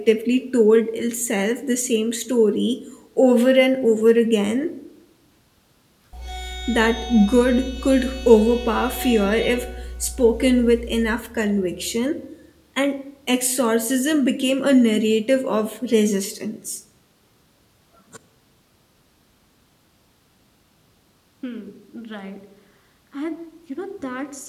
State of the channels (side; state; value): both; identical; correlation 1.00